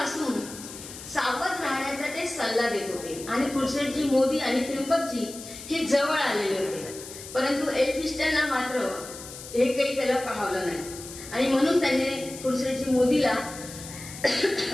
सावध राहण्याचा ते सल्ला देत होते आणि खुर्शीदजी मोदी आणि त्र्यंबकजी हे जवळ आलेले होते. परंतु एल्फिस्टनला मात्र हे काही त्याला पाहवलं नाही आणि म्हणून त्याने खुर्शीदजी मोदीला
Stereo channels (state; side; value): noise; left; hiss, 13 dB below the sound